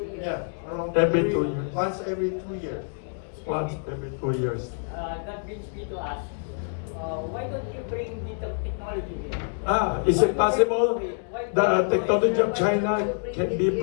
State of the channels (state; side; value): silent; right; digital silence